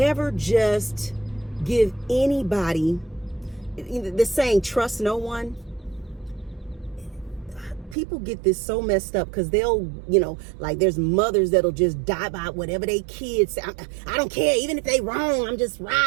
just give anybody, the saying, trust no one. People get this so messed up because they'll, like there's mothers that'll just die by whatever they kids say. I don't care, even if they wrong, I'm just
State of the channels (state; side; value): drops out; left; at 8.0 s